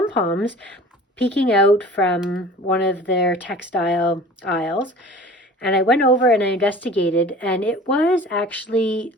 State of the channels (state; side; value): normal; both; correlation 0.43